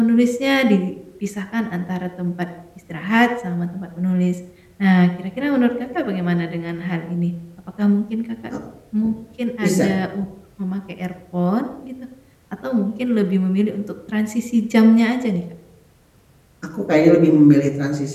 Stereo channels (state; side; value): identical; both; correlation 1.00